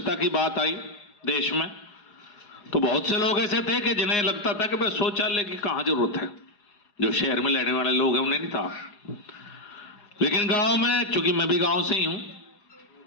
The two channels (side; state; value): right; late; 4.9 ms